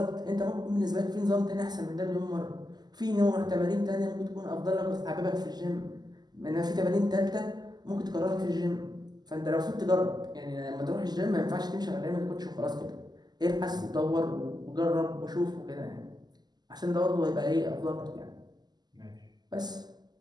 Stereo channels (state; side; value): late; left; 0.20 ms